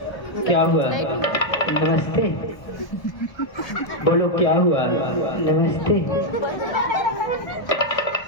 क्या हुआ? नमस्ते। बोलो क्या हुआ? नमस्ते।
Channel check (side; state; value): right; late; 1.2 ms